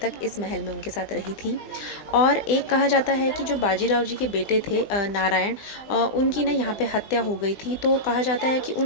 तक इस महल में उनके साथ रही थी। और एक कहा जाता है कि जो बाजीराव जी के बेटे थे नारायण, उनकी ना यहाँ पे हत्या हो गई थी। तो कहा जाता है कि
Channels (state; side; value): late; right; 20 ms